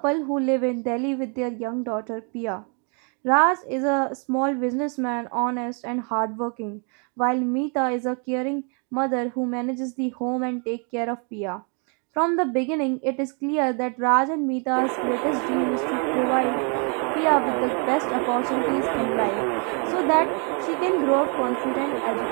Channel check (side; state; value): left; quieter; 37.5 dB